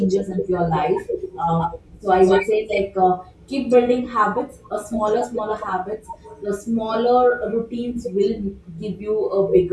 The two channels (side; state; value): both; identical; correlation 1.00